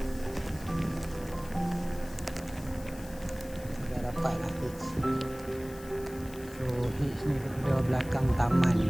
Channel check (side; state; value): left; noise; hiss, 19 dB below the sound